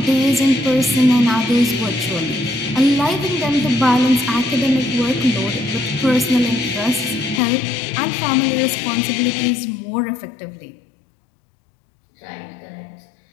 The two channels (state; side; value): drops out; right; at 7.4 s